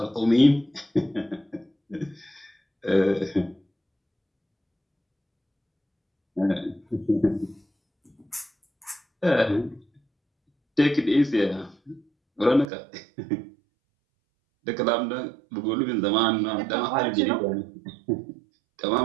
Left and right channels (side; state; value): left; drops out; at 12.7 s